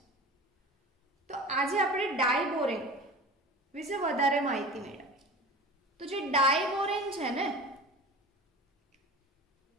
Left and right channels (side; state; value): both; normal; correlation 0.36